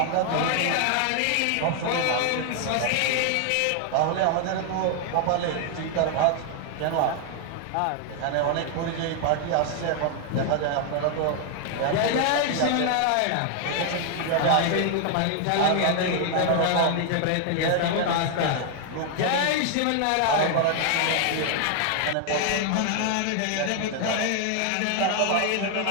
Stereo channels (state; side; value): different; both; correlation 0.00